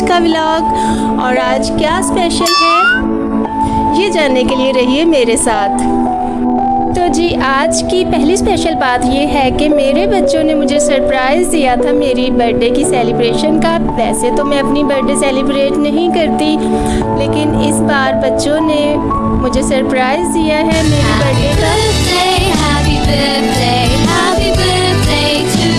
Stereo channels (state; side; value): identical; both; correlation 1.00